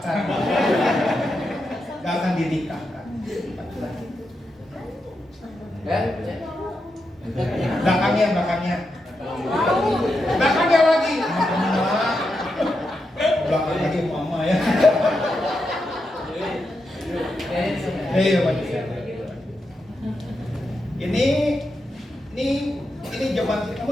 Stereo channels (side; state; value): both; normal; correlation 0.86